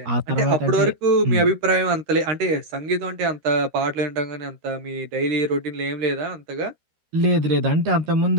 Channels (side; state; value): left; late; 13 ms